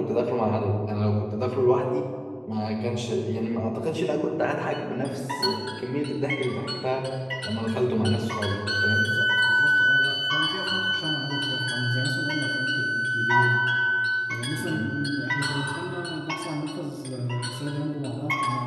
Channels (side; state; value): both; identical; correlation 1.00